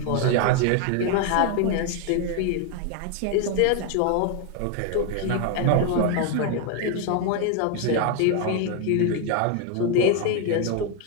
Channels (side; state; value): both; different; correlation 0.01